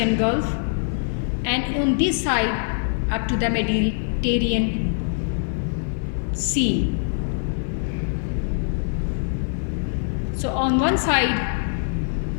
Gulf, and on this side up to the Mediterranean Sea. So on one side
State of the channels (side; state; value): right; silent; digital silence